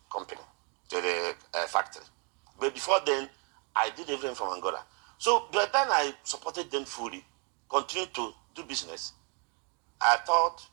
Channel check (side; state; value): left; quieter; 36.6 dB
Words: company, to the factory. But before then, I did everything from Angola. So by the time I supported them fully, continued to do business, I thought